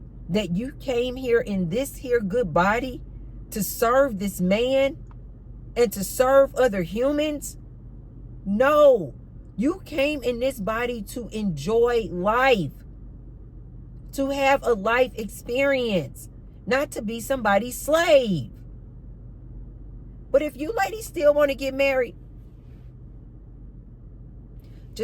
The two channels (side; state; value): both; identical; correlation 1.00